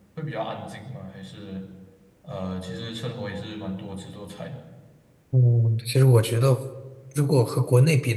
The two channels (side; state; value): both; identical; correlation 1.00